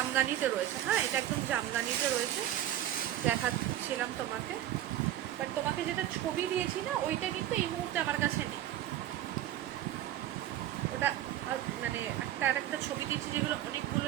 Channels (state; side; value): quieter; left; 12.6 dB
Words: রয়েছে, হ্যাঁ এটা একদম জামদানিতে রয়েছে, দেখাচ্ছিলাম তোমাকে। বাট তোমাকে যেটা ছবি দিয়েছি না ওইটা কিন্তু এই মুহূর্তে আমার কাছে নেই, ওটা মানে একটা ছবি দিয়েছি যেগুলো অনেকগুলো,